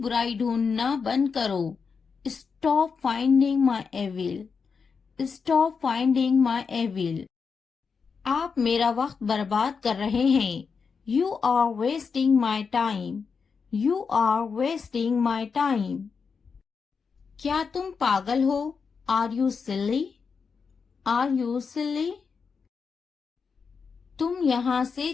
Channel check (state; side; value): quieter; right; 5.5 dB